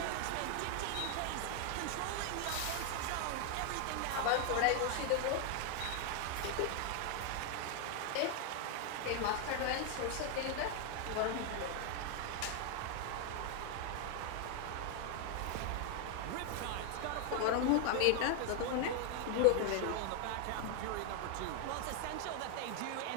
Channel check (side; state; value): both; different; correlation 0.00